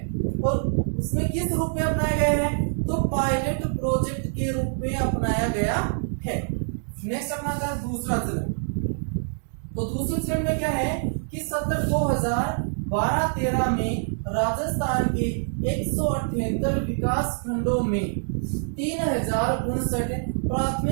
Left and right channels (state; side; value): silent; left; digital silence